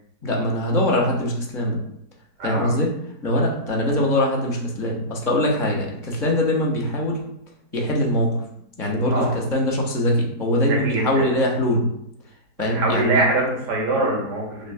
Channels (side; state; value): left; late; 3.6 ms